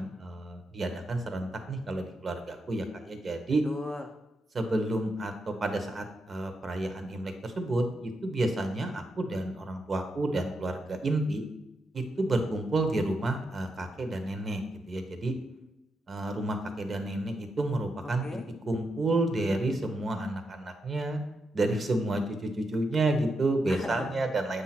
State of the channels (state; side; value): normal; both; correlation 0.84